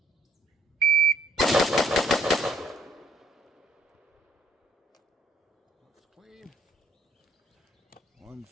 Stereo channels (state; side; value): normal; both; correlation 0.63